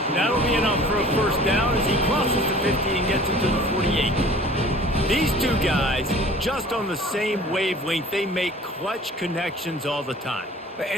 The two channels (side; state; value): both; normal; correlation 0.47